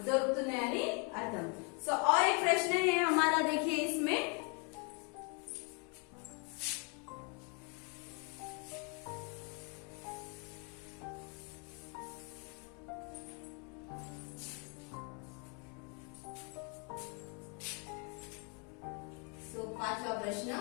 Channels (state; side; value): quieter; right; 35.6 dB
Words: దొరుకుతున్నాయని అర్థం। सो और एक प्रश्न है हमारा, देखिए इसमें, पांचवा प्रश्न,